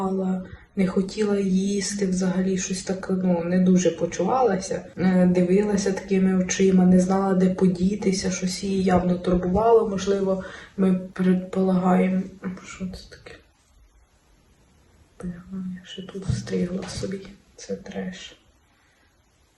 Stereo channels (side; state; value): both; identical; correlation 1.00